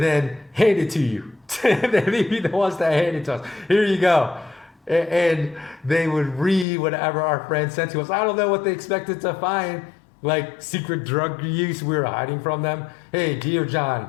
then hand it to you. They'd be the ones that hand it to us. Here you go. And they would read whatever our friends sent to us. I don't know what they expected to find, like secret drug use we were hiding from them. Hey, dear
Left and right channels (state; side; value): drops out; right; at 6.7 s